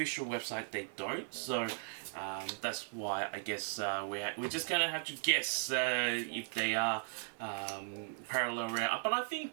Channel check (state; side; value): silent; left; 53 dB below the other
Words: website they don't, so that's why I guess we're just gonna have to guess if they are parallel rare. But I